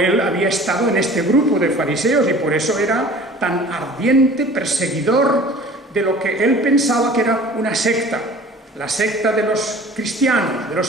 había estado en este grupo de fariseos y por eso era tan ardiente perseguidor de lo que él pensaba que era una secta, la secta de los cristianos, de los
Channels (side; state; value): both; normal; correlation 0.45